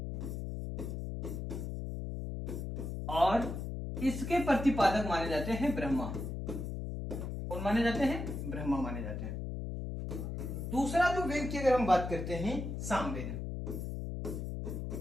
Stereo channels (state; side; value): noise; left; hum, 5 dB below the sound